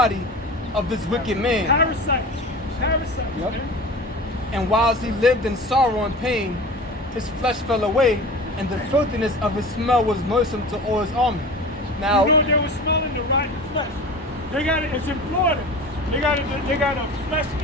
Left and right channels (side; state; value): both; normal; correlation 0.35